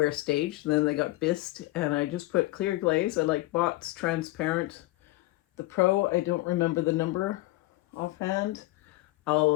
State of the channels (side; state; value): right; quieter; 19.1 dB